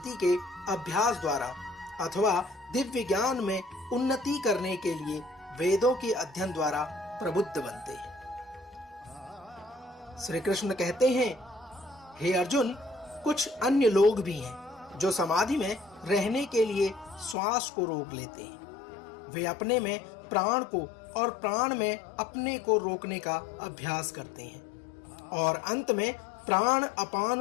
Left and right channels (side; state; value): right; drops out; at 17.4 s